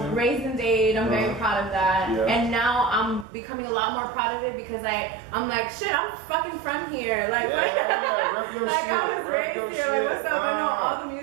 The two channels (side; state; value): left; drops out; at 3.2 s